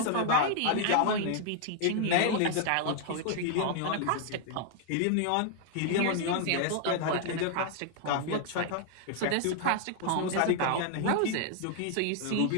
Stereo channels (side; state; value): both; different; correlation 0.00